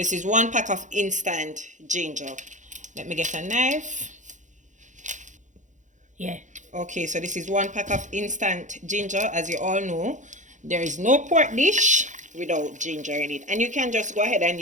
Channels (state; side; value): late; left; 0.36 ms